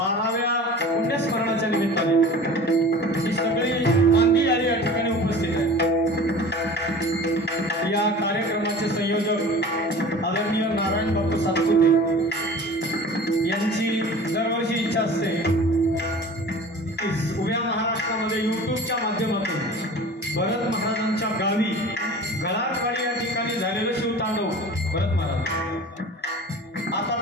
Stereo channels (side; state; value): both; normal; correlation 0.40